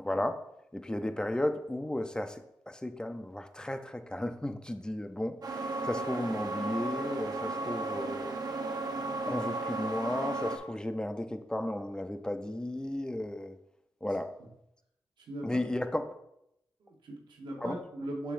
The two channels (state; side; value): normal; both; correlation 0.86